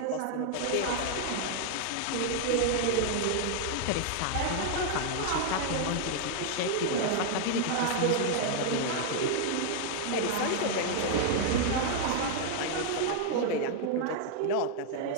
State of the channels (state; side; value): different; both; correlation 0.00